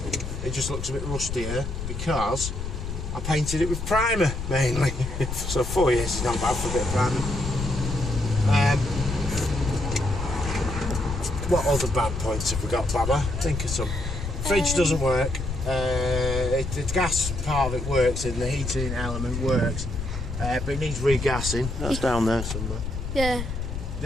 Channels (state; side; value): noise; left; rumble, 5 dB below the sound